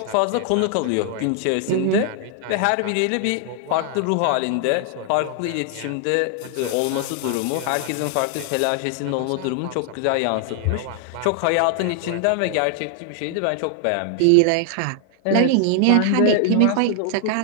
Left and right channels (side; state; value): both; different; correlation 0.00